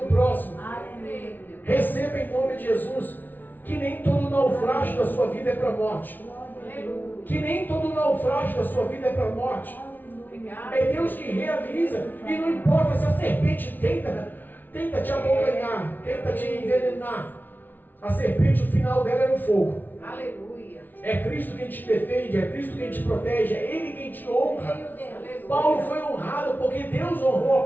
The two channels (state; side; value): late; right; 0.086 ms